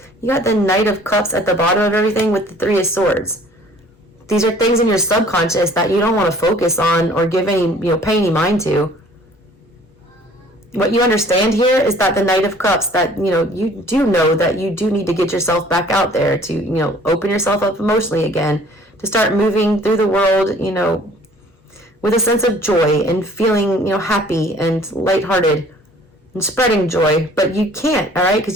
You got the Knight of Cups at the bottom of everything with the Three of Swords. These are things in your subconscious that you don't want to focus on or give any, pay any mind to. What you understand here is that the Knight of Cups, that, you do know that you do need to get yourself back out there to, open yourself up emotionally again, to start moving through the world, with a sense of joy and feeling, happy and lighthearted and spreading joy. But you can't, all right,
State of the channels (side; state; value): both; normal; correlation 0.53